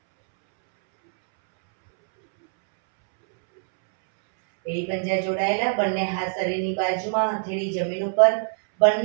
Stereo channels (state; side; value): silent; left; 63 dB below the other